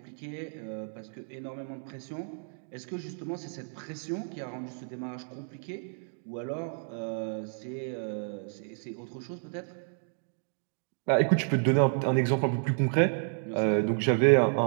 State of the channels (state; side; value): silent; left; 57 dB below the other